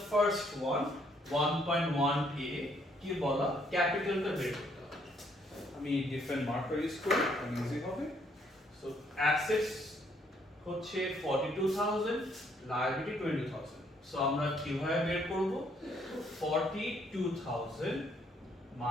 first one, 1.1a, কি বলা, ক্যাপিটালটা বের করতে হবে। আমি ডিফারেন্ট মার্কার ইউজ করি, আমি ইজি হবে। So assets হচ্ছে 42,000, লায়াবিলিটি 20,000। সো আমরা কিভাবে বের করব, 42,000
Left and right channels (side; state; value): both; normal; correlation 0.68